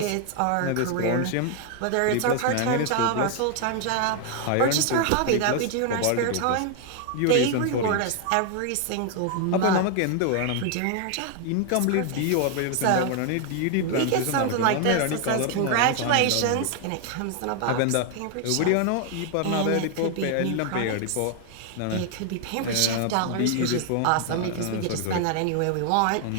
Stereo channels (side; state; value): both; different; correlation 0.00